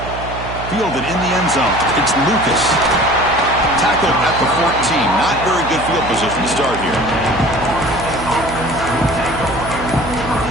Fielded in the end zone. It's Lucas. Tackled at the 14. Not very good field position to start here.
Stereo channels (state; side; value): noise; right; hum, 10 dB below the sound